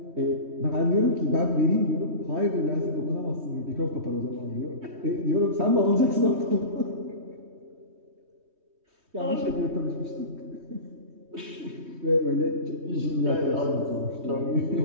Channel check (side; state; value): left; late; 3.2 ms